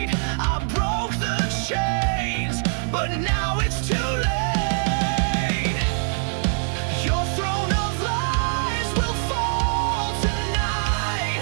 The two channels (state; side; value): silent; left; 63 dB below the other